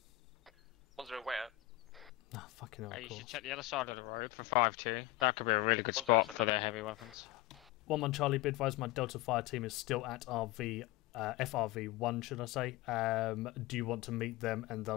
1-0 way out. Ah, fucking hell, Hey, of you course. should check the other side of the road for 5-2. That could be a really good 1-0 spot send for over. their heavy weapons. 1-1 Charlie, be advised my Delta Fire team is still at FRV1, should I say. Do you want to meet them and they'll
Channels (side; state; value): right; quieter; 17.5 dB